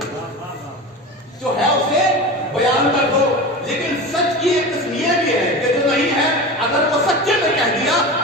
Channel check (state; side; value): normal; both; correlation 0.29